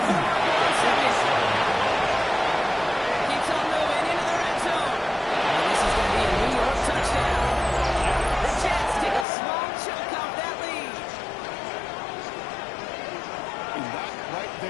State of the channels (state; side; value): drops out; right; at 9.2 s